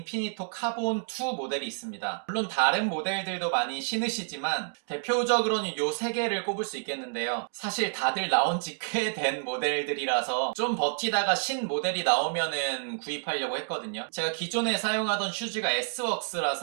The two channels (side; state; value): left; silent; digital silence